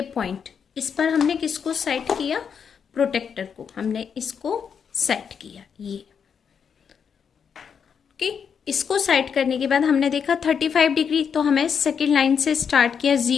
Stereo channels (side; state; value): right; quieter; 7.0 dB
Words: पॉइंट, इस पर हमने किसको सेट किया, प्रोटेक्टर को हमने इसको सेट किया ये। ओके, इसको सेट करने के बाद हमने देखा 35 डिग्री, तो हमें सेकेंड लाइन से स्टार्ट किया